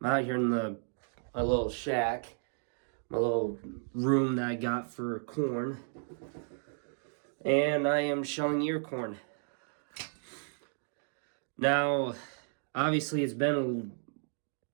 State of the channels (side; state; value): left; silent; digital silence